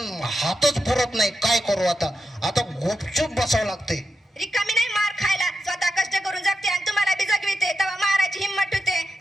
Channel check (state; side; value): normal; both; correlation 0.87